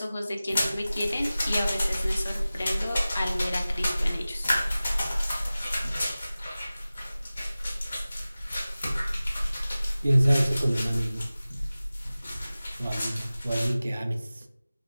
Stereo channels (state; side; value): inverted; both; correlation -0.97